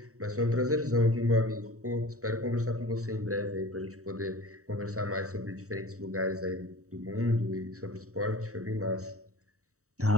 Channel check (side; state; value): left; late; 0.65 ms